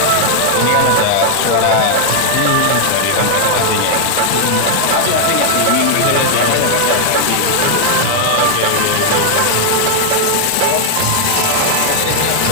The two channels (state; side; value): different; both; correlation 0.00